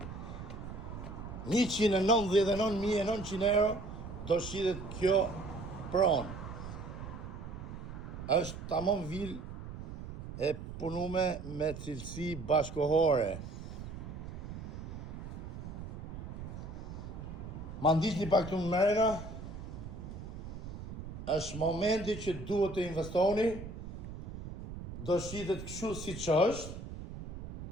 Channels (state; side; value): noise; right; rumble, 9 dB below the sound